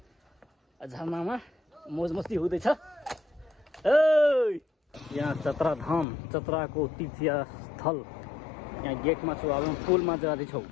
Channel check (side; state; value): right; drops out; at 6.1 s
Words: झरनामा, मोज मस्ती हुँदैछ। यहाँ चतरा धाम, चतराको तीर्थस्थल। यहाँ गेटमा छौँ, अब पुलमा जाँदैछौँ।